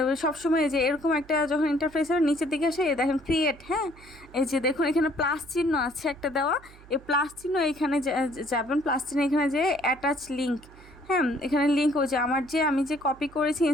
সবসময় যে এরকম একটা যখন ইন্টারফেস হবে নিচের দিকে আসে দেখেন ক্রিয়েট, হ্যাঁ। এই যে দেখুন এখানে প্লাস চিহ্ন আছে একটা দেওয়া, এই প্লাস চিহ্ন এখানে যাবেন, প্লাস চিহ্ন এখানে যে অ্যাটাচ লিঙ্ক, হ্যাঁ। এখানে লিঙ্ক ওই যে আমার যে আমি যে কপি করেছি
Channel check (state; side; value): noise; right; hum, 22 dB below the sound